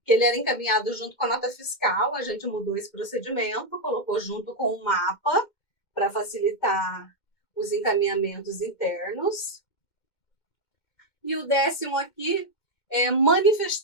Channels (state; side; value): late; right; 2.1 ms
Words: que ele era encaminhado junto com a nota fiscal, a gente mudou esse procedimento, colocou junto com o mapa para facilitar os encaminhamentos internos. E o 10º aqui é